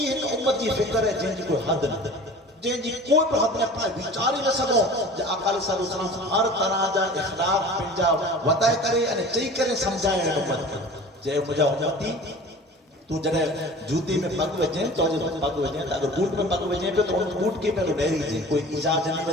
ایک امت کی فکر ہے جن کی کوئی حد نہ جن کی کوئی پر حد نہ پائے بیچاری نہ سکو جو آقا علیہ السلام ہر طرح جا اخلاق پنجا وطائے کرے انہیں چاہی کرے سمجھائے امت کے جائے مجھا امتی تو جنہیں جوتی میں پگ وجہیں تو جب پگ وجہیں اگر بوٹ میں پگ وجہیں پہ تو ان بوٹ کے پہلو ڈیری جی کوئی ایجاد جنی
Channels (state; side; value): normal; both; correlation 0.41